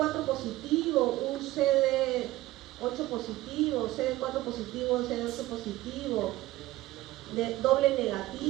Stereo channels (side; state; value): left; quieter; 16.9 dB